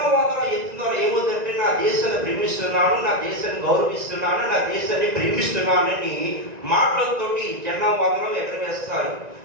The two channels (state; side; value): late; left; 1.9 ms